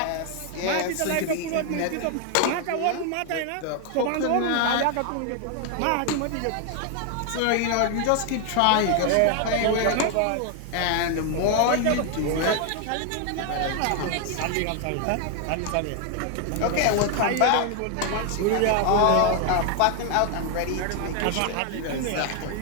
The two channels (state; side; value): different; both; correlation 0.00